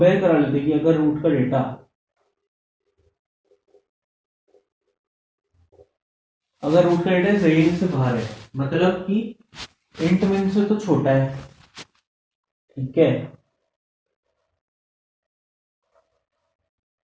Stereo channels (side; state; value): both; identical; correlation 1.00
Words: करा लेते कि अगर रूट का डेटा रेंज से बाहर है, मतलब कि इंट मिन से तो छोटा है, ठीक है,